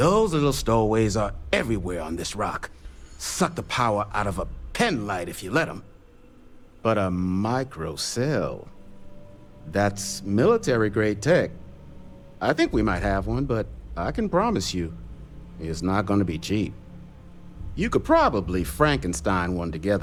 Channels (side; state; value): both; identical; correlation 1.00